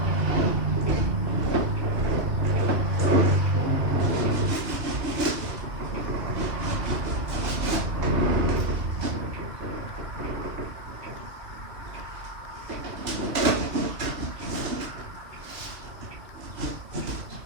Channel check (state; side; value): late; left; 2.5 ms